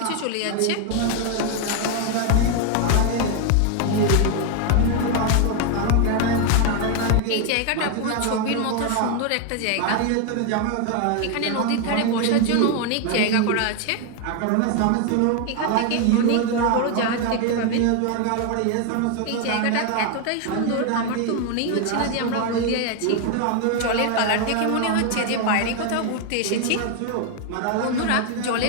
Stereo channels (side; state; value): both; different; correlation 0.01